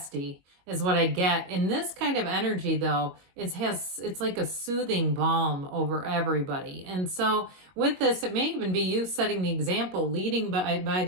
is what I get. In this kind of energy, though, it's like a soothing balm over everybody. And so with this, it may even be you setting the example, leading by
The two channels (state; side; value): late; left; 22 ms